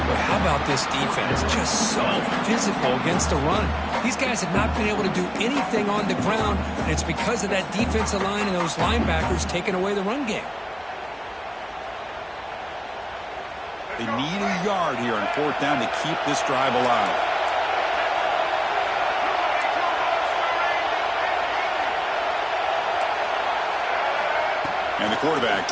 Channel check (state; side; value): identical; both; correlation 1.00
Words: But how about this defense? Just so physical against the run. These guys have not been able to do anything on the ground, and it's because of that defensive line and those linebackers taking away the run game. They need a yard here on 4th down to keep this drive alive. And the quarterback